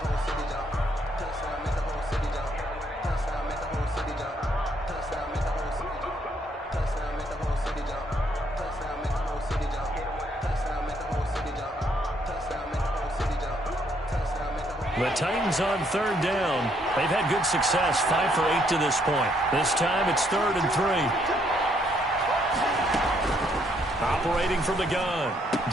The Titans on 3rd down. They've had good success, 5 for 8 to this point. This time it's 3rd and 3. Operating from the gun,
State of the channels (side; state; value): both; normal; correlation 0.70